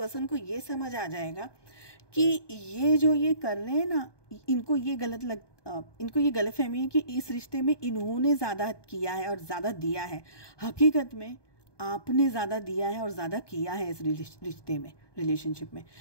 को ये समझ आ जाएगा कि ये जो ये कर रहे हैं ना, इनको ये गलतफहमी है कि इस रिश्ते में इन्होंने ज़्यादा किया है और ज़्यादा दिया है। हकीकत में आपने ज़्यादा दिया है और ज़्यादा किया है इस रिश्ते में, रिलेशनशिप में।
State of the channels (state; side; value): late; right; 1.2 ms